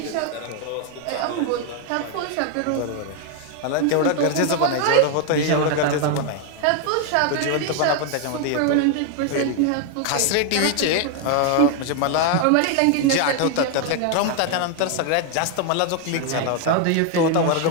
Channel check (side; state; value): both; different; correlation 0.01